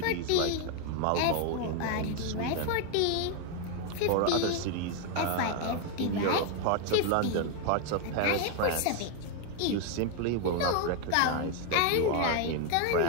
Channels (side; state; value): both; different; correlation 0.01